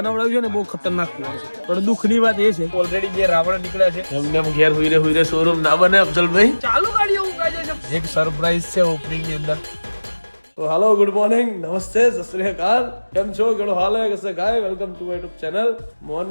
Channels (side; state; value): both; inverted; correlation -1.00